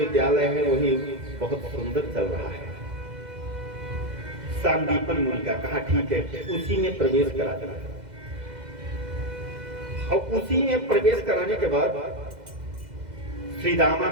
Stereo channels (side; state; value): left; late; 2.0 ms